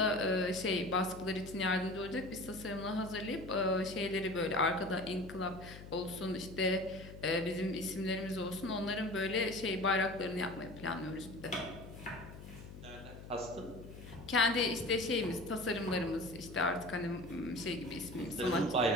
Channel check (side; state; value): left; noise; hum, 14 dB below the sound